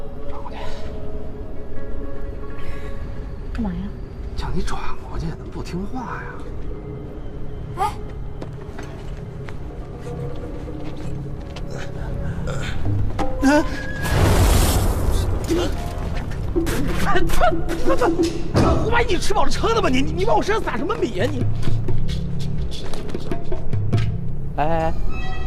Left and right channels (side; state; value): both; identical; correlation 1.00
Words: 转过去。干嘛呀？叫你转过去，怎么不听话呀？哎，我万一你吃饱了撑的吧？你往我身上撒什么米呀你？哎，